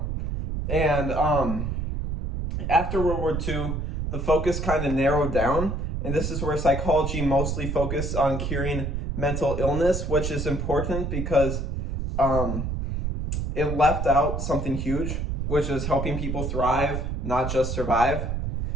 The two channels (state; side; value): noise; right; rumble, 2 dB below the sound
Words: And after World War II, the focus kind of narrowed down, and this is where psychology mostly focused on curing mental illness, which is important because it left out something huge, which is helping people thrive, not just survive.